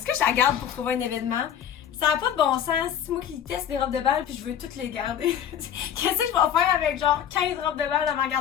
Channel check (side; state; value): right; quieter; 9.5 dB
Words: que je la garde pour trouver un événement? Ça n'a pas de bon sens. C'est moi qui teste des robes de bal puis je veux toutes les garder. Qu'est-ce que je vais faire avec genre 15 robes de bal dans ma